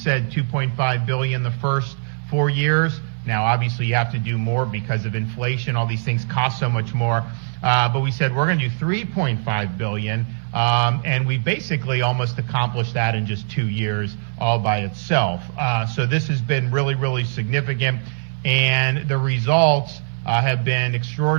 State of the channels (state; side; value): silent; left; 65 dB below the other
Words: $2.5 billion the first 4 years. Now, obviously, you have to do more because of inflation. All these things cost so much more. But we said we're going to do $3.5 billion. And we basically almost accomplished that in just 2 years all by itself. So this has been really, really significant. And the results have been